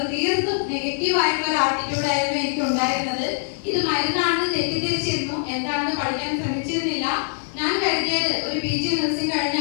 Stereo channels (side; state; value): right; silent; digital silence